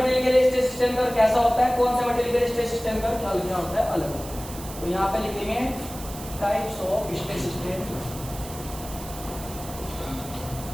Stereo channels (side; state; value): right; noise; hiss, 13 dB below the sound